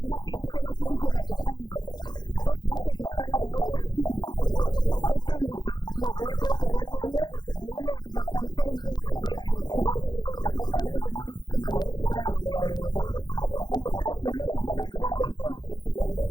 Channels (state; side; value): late; right; 0.21 ms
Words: akaniselaki biso bato pamba apesi biso musala na ye tosimba totambusa yango elongo na ye na baconseil na ye mpe na badirective na ye yango bomoni biso na Yelusalemi na lelo na makasi nyonso na bavolonté na esengo.